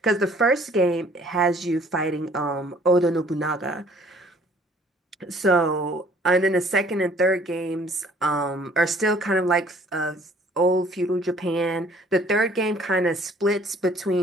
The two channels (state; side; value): normal; both; correlation 0.57